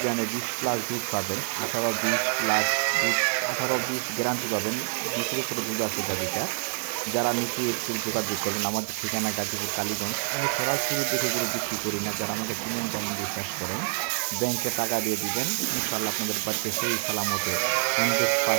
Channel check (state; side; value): silent; left; 60 dB below the other